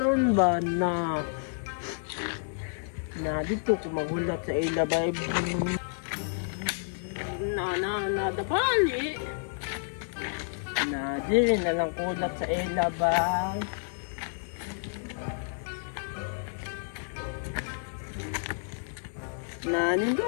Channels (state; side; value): silent; right; digital silence